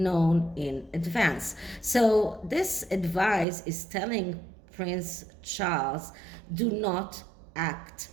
in advance. So this advice is telling Prince Charles, do not act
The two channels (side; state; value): left; drops out; at 3.5 s